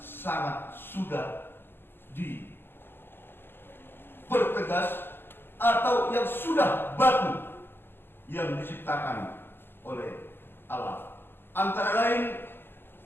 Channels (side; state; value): right; late; 0.10 ms